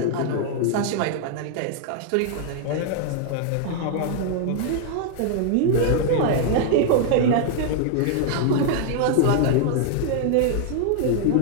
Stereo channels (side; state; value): both; different; correlation 0.00